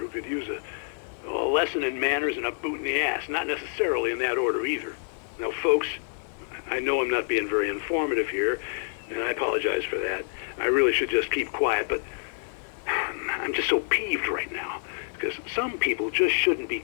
could use a lesson in manners and a boot in the ass, not necessarily in that order either. Now, folks, I know I'm not being very informative here, and I apologize for that. I really should just keep quiet, but I'm just so peeved right now, because some people just shouldn't be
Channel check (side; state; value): right; silent; 56 dB below the other